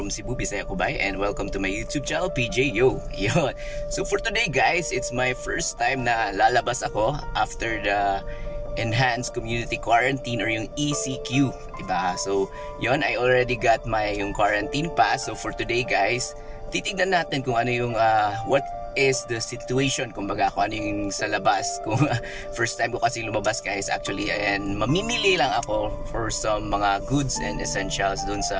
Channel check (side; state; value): both; identical; correlation 1.00